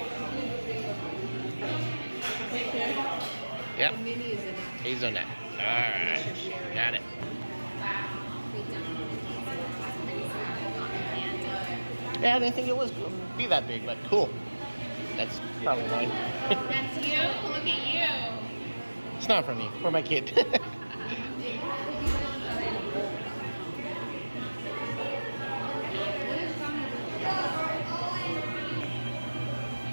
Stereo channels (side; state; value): both; inverted; correlation -1.00